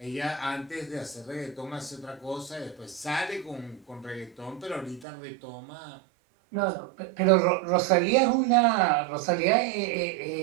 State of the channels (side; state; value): left; drops out; at 5.1 s